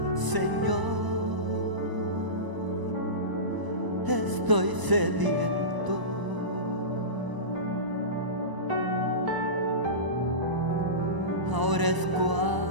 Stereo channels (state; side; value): late; left; 1.0 ms